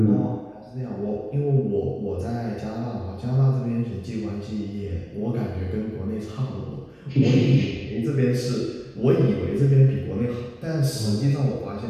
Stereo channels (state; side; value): identical; both; correlation 1.00